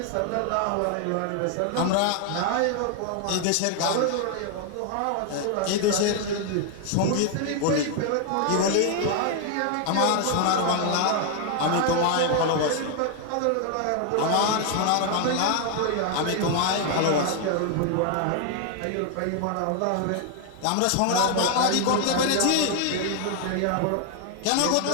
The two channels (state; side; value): different; both; correlation 0.00